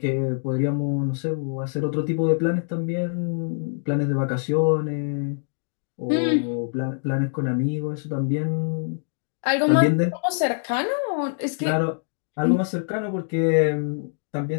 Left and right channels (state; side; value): silent; right; 62 dB below the other